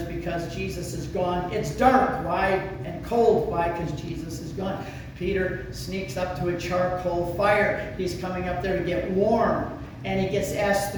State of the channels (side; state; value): both; identical; correlation 1.00